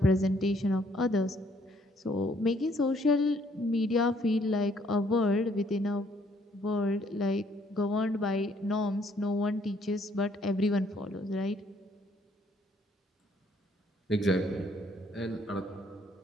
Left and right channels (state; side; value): normal; both; correlation 0.65